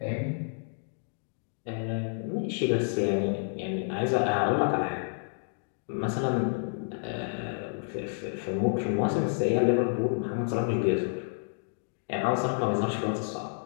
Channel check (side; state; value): right; silent; digital silence